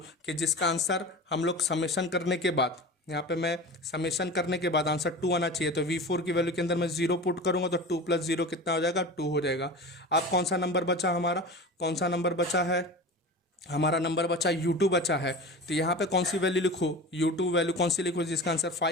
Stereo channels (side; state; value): both; normal; correlation 0.32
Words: कि जिसका आंसर हम लोग समेशन करने के बाद, यहाँ पे मैं समेशन करने के बाद आंसर 2 आना चाहिए। तो V4 की वैल्यू के अंदर मैं 0 पुट करूंगा तो 2 प्लस 0 कितना हो जाएगा, 2 हो जाएगा। अब कौन सा नंबर बचा हमारा, कौन सा नंबर बचा है, हमारा नंबर बचा U2 बचा है। तो यहाँ पे कौन सी वैल्यू लिखूँ, U2 वैल्यू कौन सी लिखूँ जिसका आंसर